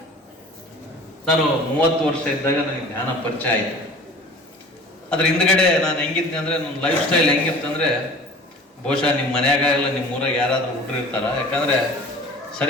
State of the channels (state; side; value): normal; both; correlation 0.43